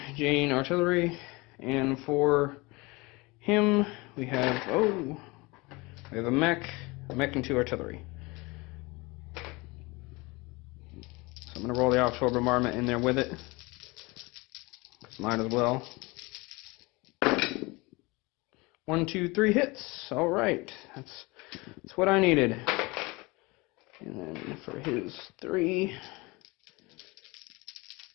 Jane artillery. And for him, we have a mech and 2 artillery. So I'm going to roll the offshore bombardment in there with it. Might as well. 1, 2, 3 hits. All right, that's what I needed. And then for his 3,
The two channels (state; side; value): quieter; right; 24.5 dB